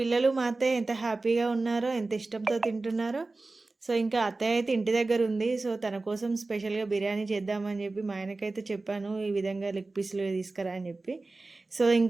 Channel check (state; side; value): quieter; left; 3.4 dB